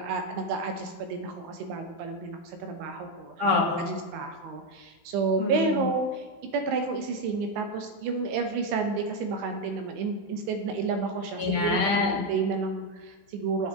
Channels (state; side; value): late; left; 15 ms